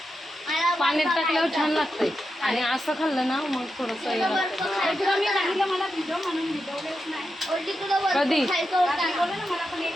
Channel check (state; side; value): normal; both; correlation 0.88